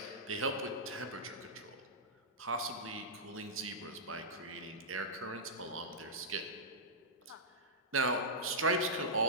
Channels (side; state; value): both; normal; correlation -0.13